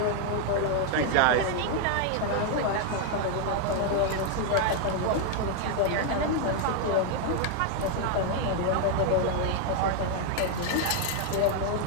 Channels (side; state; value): both; different; correlation 0.00